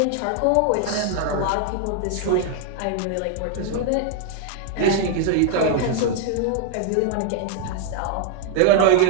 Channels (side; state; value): both; different; correlation 0.00